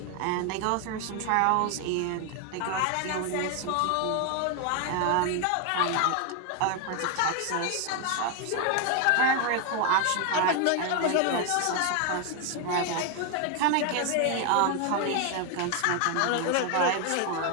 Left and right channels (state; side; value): different; both; correlation 0.01